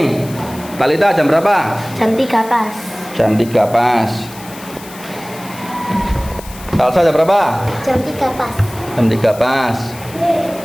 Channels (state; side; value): noise; left; hiss, 17 dB below the sound